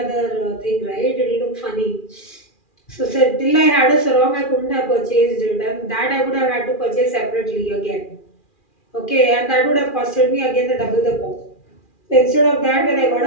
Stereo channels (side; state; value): right; late; 2.4 ms